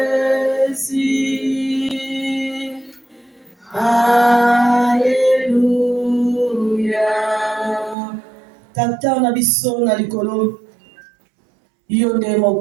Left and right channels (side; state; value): left; drops out; at 8.0 s